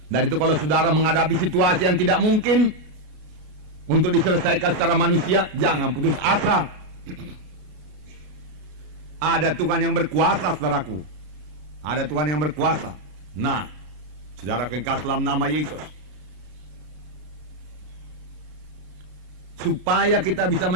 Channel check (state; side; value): late; left; 33 ms